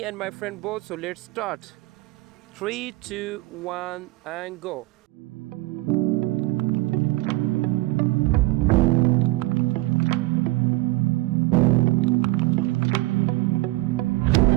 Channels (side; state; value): left; quieter; 19.9 dB